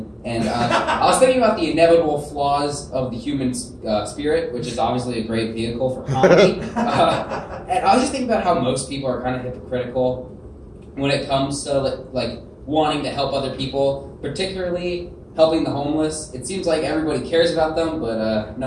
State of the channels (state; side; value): identical; both; correlation 1.00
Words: And I was thinking about the inevitable flaws of the human spirit, which is obviously a great vehicle for comedy. And I was just thinking about how most people are kind of hypocritical when it comes to like wanting to help other people, particularly helping the homeless. It seems like everybody cares about them, but